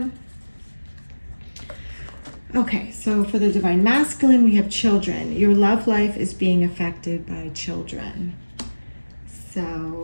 Okay, so for the Divine Masculine, we have children. Your love life is being affected by children. So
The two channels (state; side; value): inverted; both; correlation -1.00